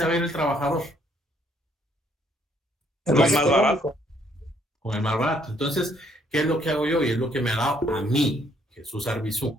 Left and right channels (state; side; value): normal; both; correlation 0.67